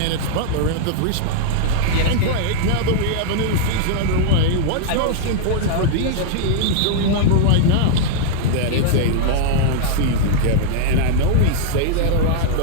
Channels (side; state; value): both; different; correlation -0.01